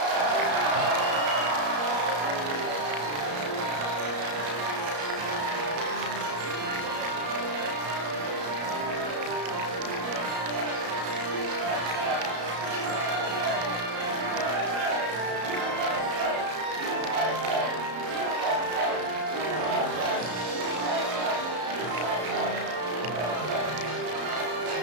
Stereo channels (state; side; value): late; left; 33 ms